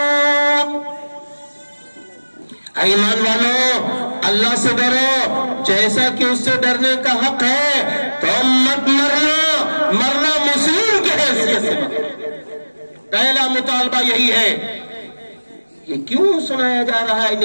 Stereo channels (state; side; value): inverted; both; correlation -1.00